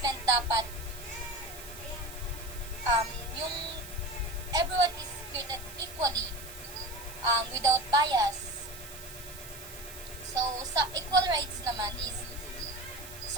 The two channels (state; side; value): noise; right; hiss, 14 dB below the sound